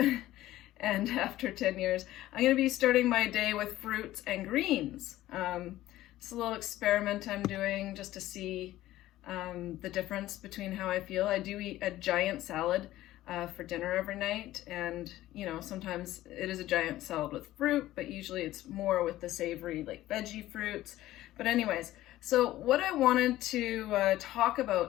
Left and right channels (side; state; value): right; quieter; 15.2 dB